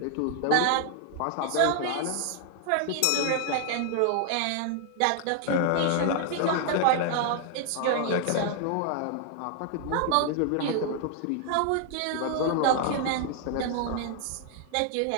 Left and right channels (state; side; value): different; both; correlation 0.00